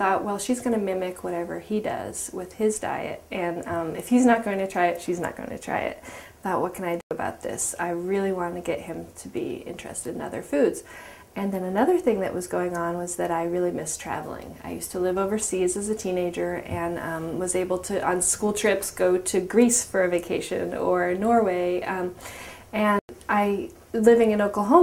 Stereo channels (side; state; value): both; identical; correlation 1.00